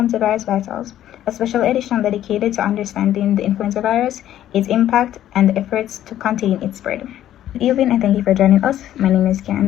to Virus Vitals, a special edition dedicated to understanding the influenza virus, its impact, and the efforts to contain its spread. Good evening and thank you for joining us. My name is Karen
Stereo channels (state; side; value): quieter; right; 12.1 dB